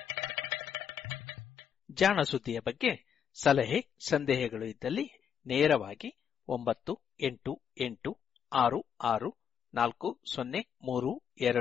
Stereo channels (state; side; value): quieter; right; 8.0 dB